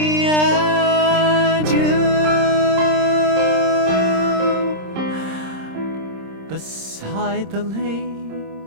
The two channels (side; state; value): left; late; 26 ms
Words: and you. Beside the